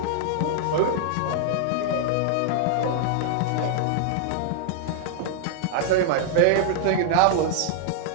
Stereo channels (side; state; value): both; different; correlation -0.01